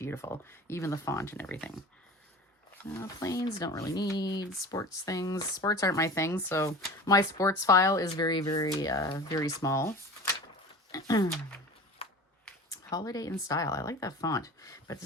Even the font and everything. Planes, don't really need. Sports things. Sports aren't my thing. So my sports file is very, very, very small. Holiday in Style. I like that font. But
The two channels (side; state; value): both; normal; correlation 0.37